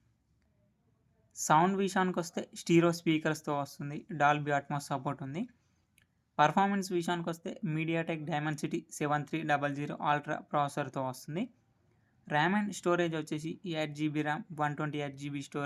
సౌండ్ విషయానికి వస్తే స్టీరో స్పీకర్స్తో వస్తుంది. డాల్బీ అట్మాస్ సపోర్ట్ ఉంది. పర్ఫార్మెన్స్ విషయానికి వస్తే మీడియాటెక్ డైమెన్సిటీ 7300 అల్ట్రా ప్రాసెసర్తో వస్తుంది. ర్యామ్ అండ్ స్టోరేజ్ వచ్చేసి 8GB ర్యామ్ 128GB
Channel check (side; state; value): both; identical; correlation 1.00